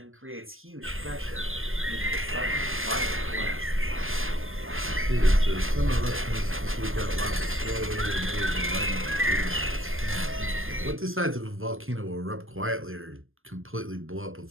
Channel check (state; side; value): late; left; 0.60 ms